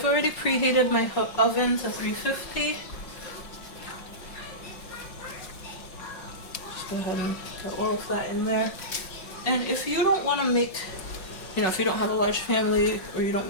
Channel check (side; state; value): right; late; 5.3 ms